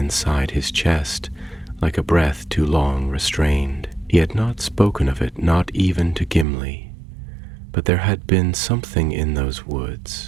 his chest, like a breath too long restrained. He had not spoken of it, not even to Gimli, But there had been something in those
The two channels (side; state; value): left; drops out; at 6.5 s